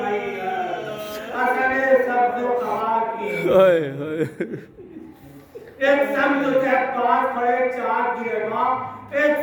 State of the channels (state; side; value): identical; both; correlation 1.00